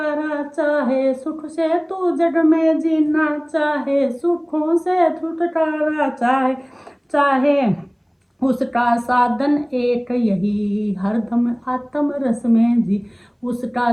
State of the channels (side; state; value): both; identical; correlation 1.00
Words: चाहे। सुख से तू जड़ में जीना चाहे, सुखों से छुटकारा चाहे। चाहे उसका साधन एक यही, हरदम आत्म रस में जी। उसका